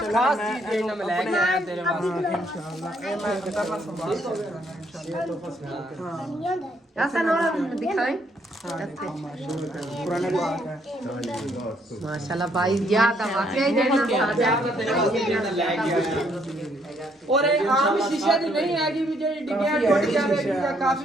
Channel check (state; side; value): normal; both; correlation 0.70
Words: ਖਾਸ ਚੀਜ਼ ਮੈਂ ਲੈ ਕੇ ਆਇਆ ਤੇਰੇ ਵਾਸਤੇ इंशाल्लाह ਇਹ ਮੈਂ ਕਰਨਾ ਸੰਭਾਲ ਹੋਵੇਗਾ ਐਸਾ ਨਾ ਦਿਖਾਈ पुराने बात है ਮਾਸ਼ਾਅੱਲਾ ਭਾਈ ਗਿਆ ਤਾਂ ਵਾਕਿਆ ਹੀ ਦੇਣਾ ਪਿਆਰ ਨਾਲ ਤੇਰੇ ਵਾਸਤੇ ਜਿਹੜਾ ਲੈ ਕੇ ਆਇਆ ਔਰ ਇਹ ਆਮ ਸ਼ੀਸ਼ੇ ਦੀ ਨਹੀਂ ਹੈਗੀ ਵੀ ਜਿਹੜੀ ਡਿੱਗਿਆ ਟੁੱਟ ਜਾਵੇ ਜਾਂ